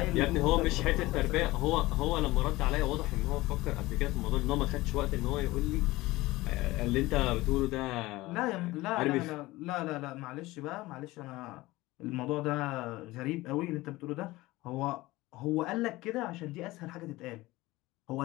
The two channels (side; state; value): right; quieter; 19.3 dB